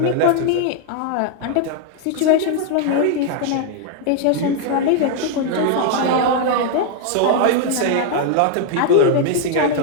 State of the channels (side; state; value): both; different; correlation 0.00